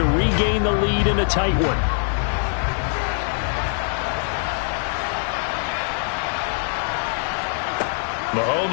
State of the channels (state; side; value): silent; right; 64 dB below the other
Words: regain the lead in a tight one.